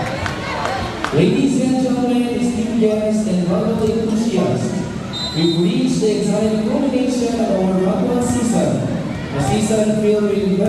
Ladies and gentlemen, esteemed guests and volleyball enthusiasts, we've reached the exciting culmination of our volleyball season. A season filled with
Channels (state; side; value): identical; both; correlation 1.00